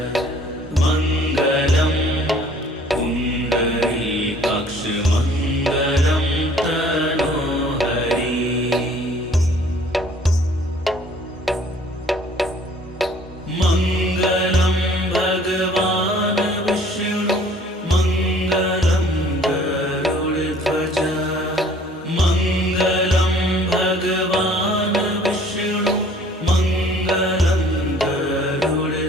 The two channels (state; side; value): normal; both; correlation 0.55